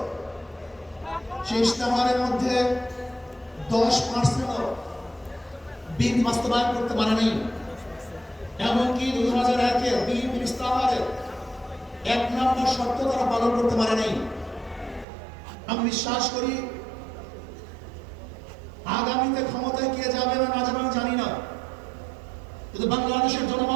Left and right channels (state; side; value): drops out; left; at 15.1 s